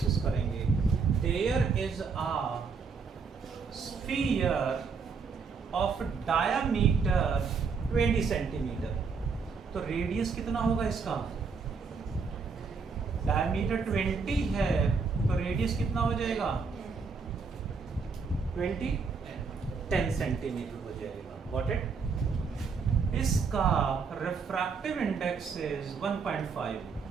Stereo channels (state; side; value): quieter; left; 5.2 dB